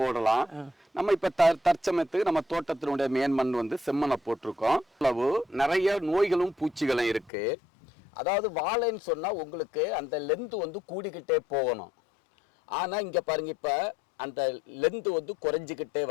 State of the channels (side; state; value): right; drops out; at 7.3 s